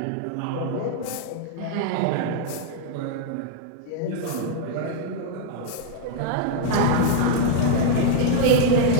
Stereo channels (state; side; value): different; both; correlation -0.01